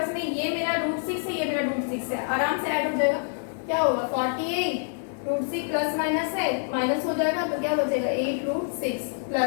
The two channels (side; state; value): right; silent; digital silence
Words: में ये मेरा रूट 6 है, ये मेरा रूट 6 है, आराम से ऐड हो जाएगा, क्या होगा 48 रूट 6 प्लस माइनस है, माइनस हो जाएगा तो क्या बचेगा 8 रूट 6